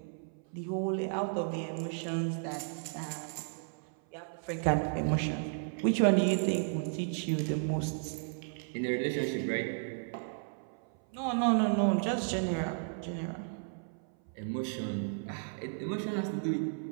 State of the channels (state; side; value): silent; left; 55 dB below the other